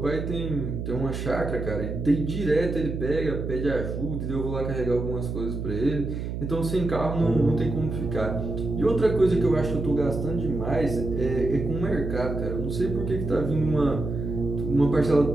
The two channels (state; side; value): noise; right; hum, 5 dB below the sound